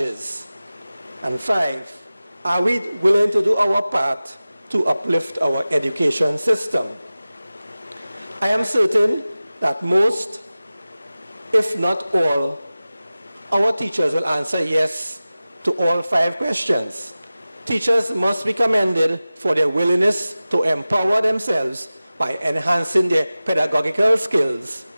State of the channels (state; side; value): inverted; both; correlation -0.97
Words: And 5, are we willing to do our part to uplift our education system? I am certain that most, if not all, our teachers will answer yes to all 5 questions. Teachers must be commended for their willingness to empower themselves by enhancing their pedagogical skills,